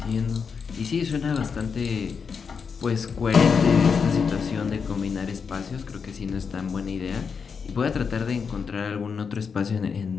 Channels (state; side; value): quieter; right; 5.9 dB